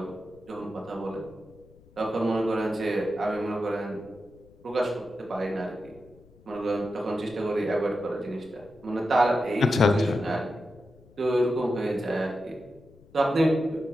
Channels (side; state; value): left; noise; rumble, 26 dB below the sound